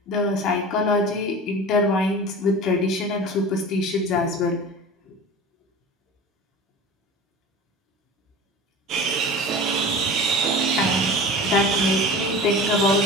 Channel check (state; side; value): normal; both; correlation 0.35